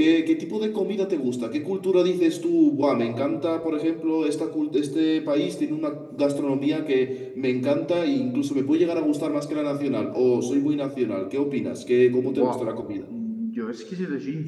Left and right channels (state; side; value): identical; both; correlation 1.00